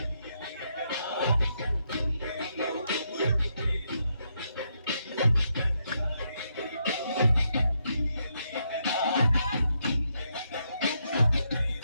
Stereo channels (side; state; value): both; inverted; correlation -0.79